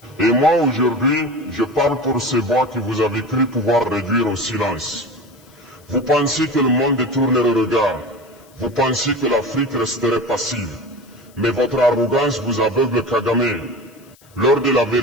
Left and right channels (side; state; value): left; noise; hiss, 29 dB below the sound